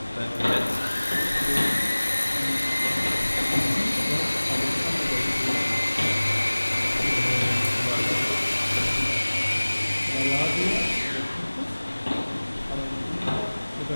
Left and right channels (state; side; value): inverted; both; correlation -1.00